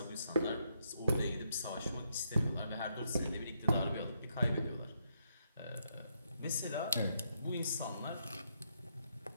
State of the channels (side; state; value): both; inverted; correlation -0.77